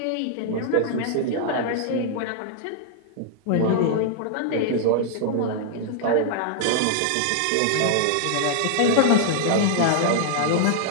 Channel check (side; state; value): both; different; correlation -0.01